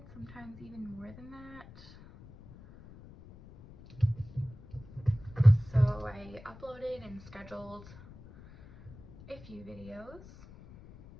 sometimes even more than that. So I uploaded and scheduled a few videos.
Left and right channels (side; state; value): left; noise; rumble, 19 dB below the sound